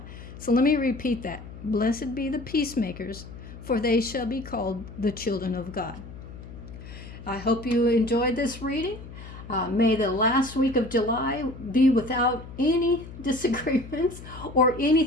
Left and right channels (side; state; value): left; noise; hum, 14 dB below the sound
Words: So let me repeat that. Blessed be the peacemakers, for they shall be called the children of God. I hope you enjoyed this reading. May the last week of July be without any disagreements or